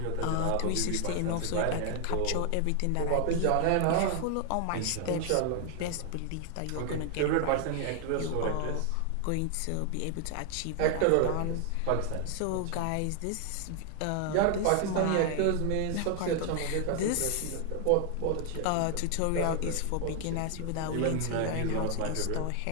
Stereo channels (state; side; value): different; both; correlation 0.00